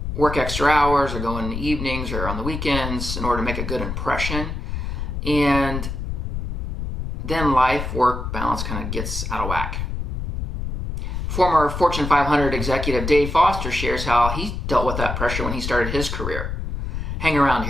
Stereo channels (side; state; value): left; noise; rumble, 4 dB below the sound